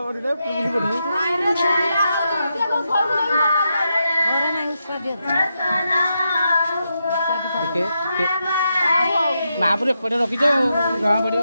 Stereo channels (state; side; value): inverted; both; correlation -0.85